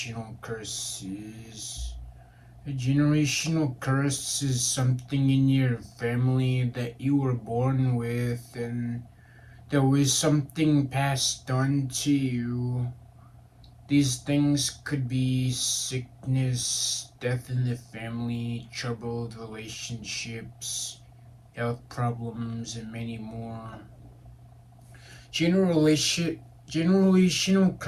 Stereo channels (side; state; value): both; identical; correlation 1.00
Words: curses. A generational curse is something in your family that you were born with, and there was something passed on to you. These things could be sickness, death in the family, troubled relationships, health problems, and many more. Generation, Generational